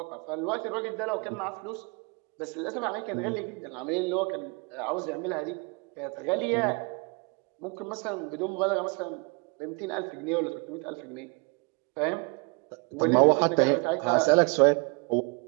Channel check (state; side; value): quieter; left; 31.8 dB